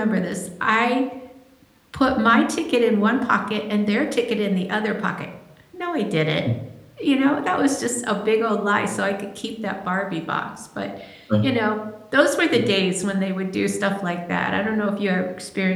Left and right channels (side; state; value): both; identical; correlation 1.00